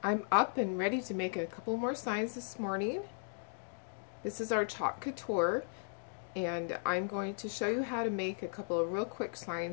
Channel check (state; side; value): silent; right; digital silence